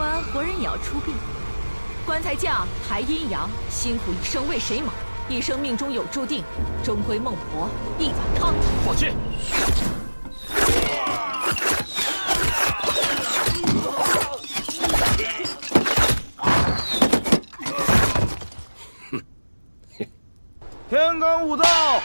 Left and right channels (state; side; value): inverted; both; correlation -1.00